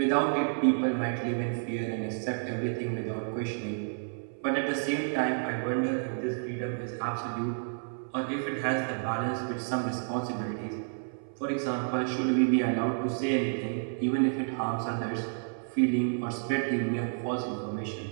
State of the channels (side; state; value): left; silent; 58 dB below the other